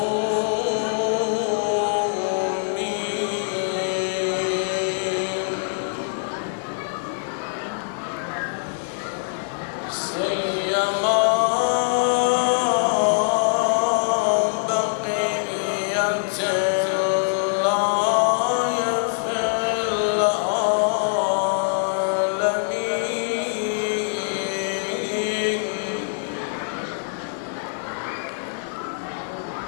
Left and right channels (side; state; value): right; silent; digital silence